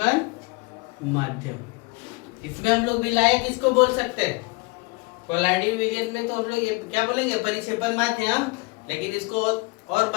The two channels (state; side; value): quieter; right; 26.7 dB